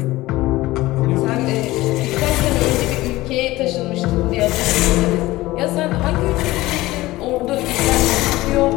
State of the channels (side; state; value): right; quieter; 18.3 dB